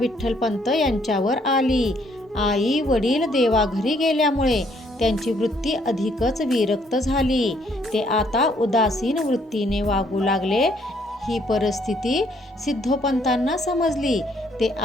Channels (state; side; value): normal; both; correlation 0.67